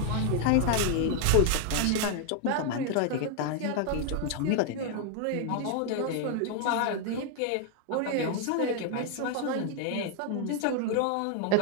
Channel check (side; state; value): both; different; correlation 0.00